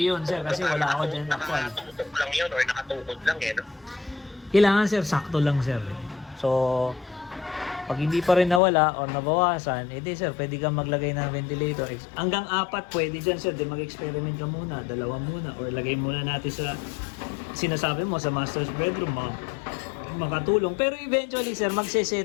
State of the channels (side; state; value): right; drops out; at 8.6 s